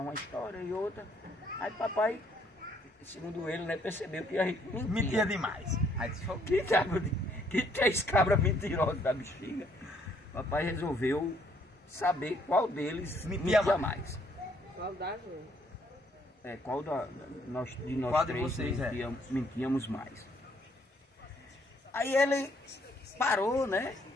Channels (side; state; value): both; normal; correlation 0.67